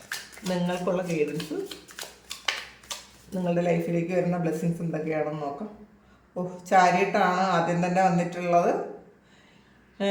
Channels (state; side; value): identical; both; correlation 1.00